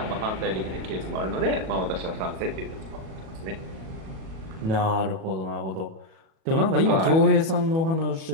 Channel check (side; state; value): left; late; 37 ms